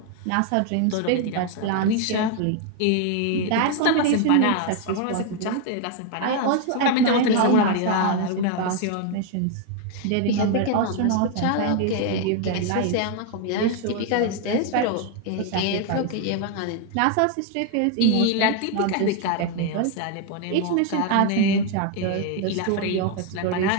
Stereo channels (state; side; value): different; both; correlation 0.00